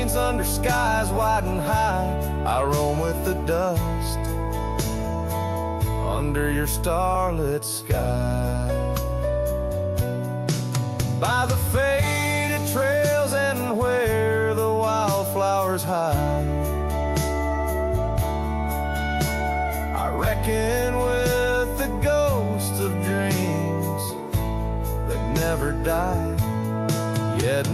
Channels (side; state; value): both; identical; correlation 1.00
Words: under skies wide and high, I roam with the dust under your starlit sky. By the faded trails and where the wildflowers hide, I reckon with the ghosts of dreams that never die. Yet